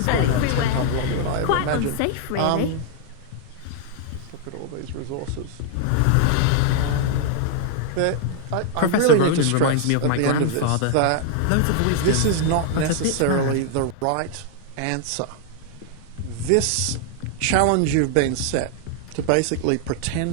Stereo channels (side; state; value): both; different; correlation 0.00